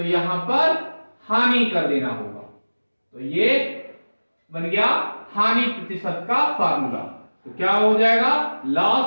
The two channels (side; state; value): both; inverted; correlation -1.00